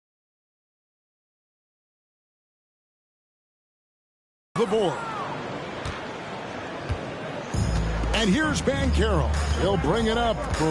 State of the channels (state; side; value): identical; both; correlation 1.00